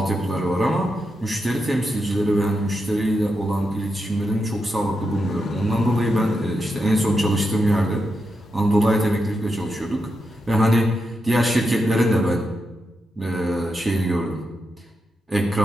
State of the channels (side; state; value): both; normal; correlation 0.86